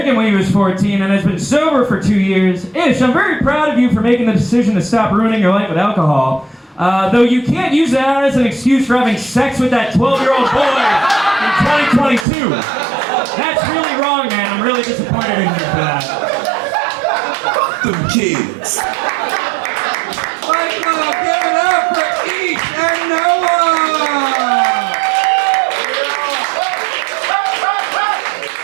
when he was 14 and has been sober for 2 years. Ish, I'm very proud of you for making the decision to stop ruining your life with alcohol. Though you can't use that as an excuse for having sex with that 12-year-old boy in 2022. That's really wrong, man. I'm really disappointed in you for that. Fuck them kids. Give it up for Ish and Noah.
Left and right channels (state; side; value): drops out; left; at 12.2 s